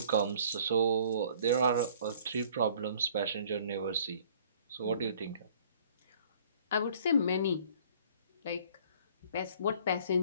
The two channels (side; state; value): both; inverted; correlation -0.55